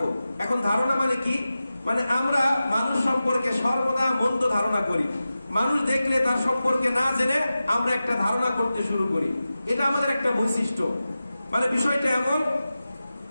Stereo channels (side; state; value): both; inverted; correlation -0.94